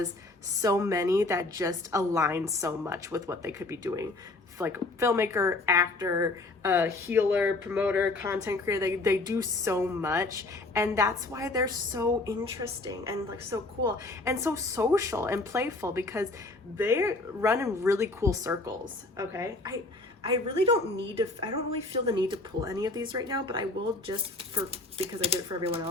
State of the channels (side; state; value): right; quieter; 3.1 dB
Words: so many that just align so much with what they could be doing. Like filmmaker, actor, healer, promoter, content creator, they do so much, and that's why they're so interesting and like so cool and so social and playful, because they run in really cool circles. Okay, I really don't need to, I don't really feel the need to pull any of these right now, but I will just because I did it for everyone